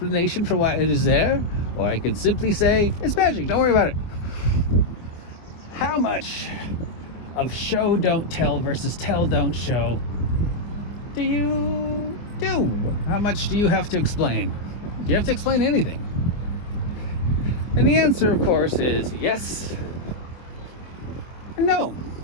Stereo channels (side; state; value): right; late; 24 ms